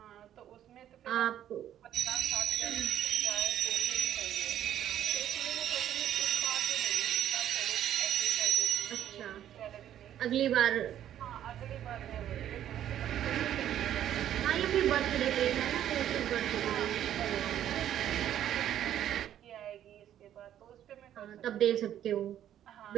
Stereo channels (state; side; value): quieter; left; 11.1 dB